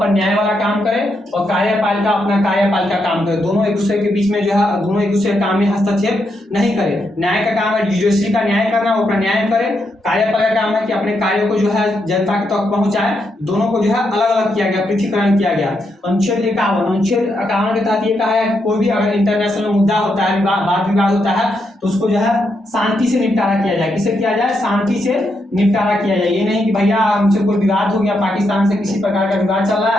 न्याय वाला काम करे और कार्यपालिका अपना कार्यपालिका काम करे। दोनों एक दूसरे के बीच में जो है दोनों एक दूसरे काम में हस्तक्षेप नहीं करे। न्याय का काम है जुडिशरी का न्याय करना, वो अपना न्याय करे। कार्यपालिका काम है कि अपने कार्यों को जो है जनता तक पहुंचाए। दोनों को जो है अलग अलग किया गया, पृथकीकरण किया गया। अनुच्छेद 51 के तहत ये कहा है कि कोई भी अगर इंटरनेशनल मुद्दा होता है, वाद विवाद होता है, तो उसको जो है शांति से निपटारा किया जाए। किससे किया जाए? शांति से निपटारा किया जाए। ये नहीं कि भैया हमसे कोई विवाद हो गया, पाकिस्तान से किसी प्रकार का विवाद चल रहा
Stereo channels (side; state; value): both; normal; correlation 0.81